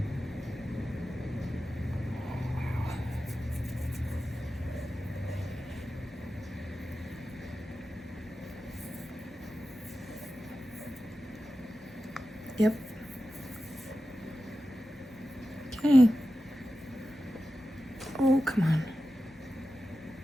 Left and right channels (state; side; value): normal; both; correlation 0.93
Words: Yep. Okay. Oh, come on.